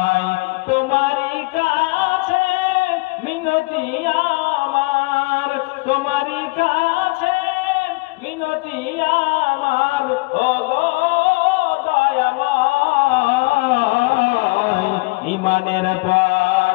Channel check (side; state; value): right; quieter; 25.9 dB